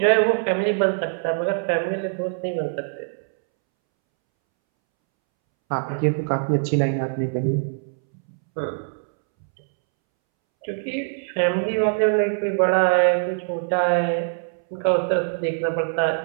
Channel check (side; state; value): left; silent; 63 dB below the other